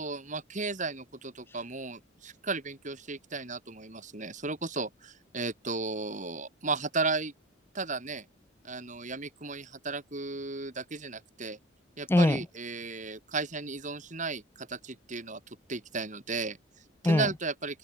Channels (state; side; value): normal; both; correlation 0.33